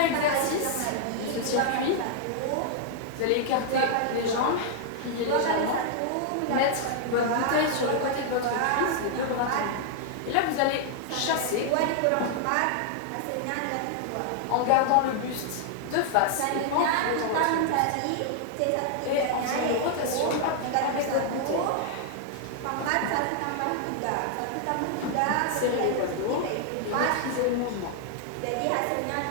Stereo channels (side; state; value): both; different; correlation 0.00